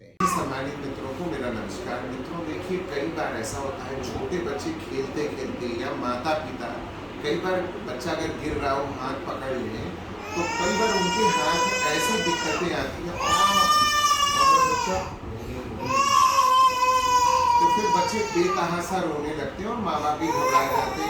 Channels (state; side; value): identical; both; correlation 1.00